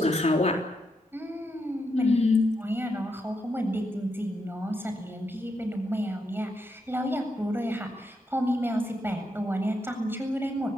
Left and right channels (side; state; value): both; normal; correlation 0.81